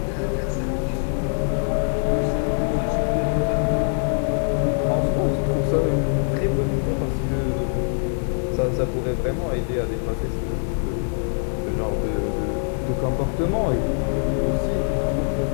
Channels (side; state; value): right; silent; digital silence